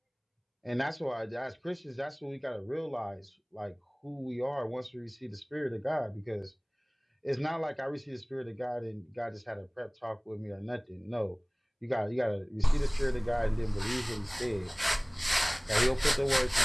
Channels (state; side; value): identical; both; correlation 1.00